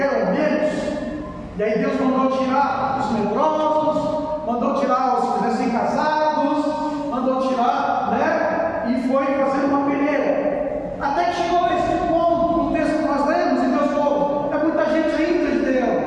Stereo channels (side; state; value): both; identical; correlation 1.00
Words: menos. E aí Deus mandou tirar os medrosos, mandou tirar os recém-casados, mandou tirar, e foi fazer uma peneira. Até que chegou a esse ponto, no texto que nós lemos, e Deus falou: é muita gente ainda, Gideão,